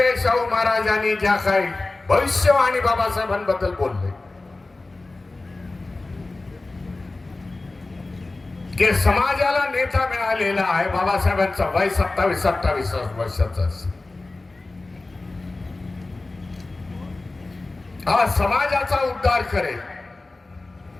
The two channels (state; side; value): quieter; right; 3.2 dB